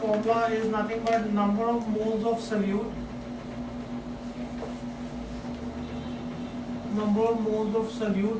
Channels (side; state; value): both; identical; correlation 1.00